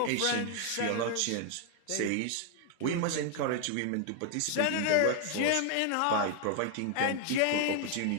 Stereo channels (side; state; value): both; different; correlation 0.00